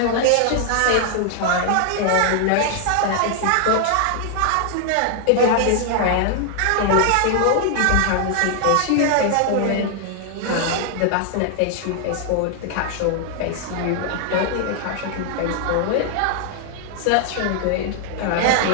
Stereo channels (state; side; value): different; both; correlation 0.00